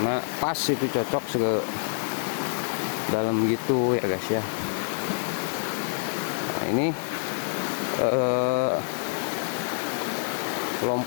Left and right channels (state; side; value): silent; right; 60 dB below the other